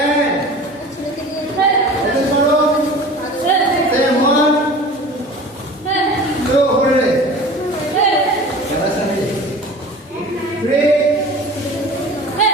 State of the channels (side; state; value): both; normal; correlation 0.39